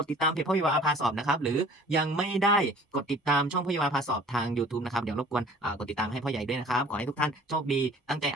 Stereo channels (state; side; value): normal; both; correlation 0.49